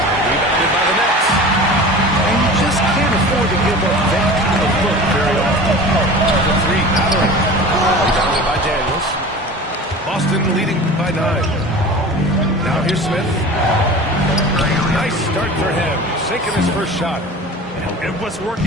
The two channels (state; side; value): normal; both; correlation 0.37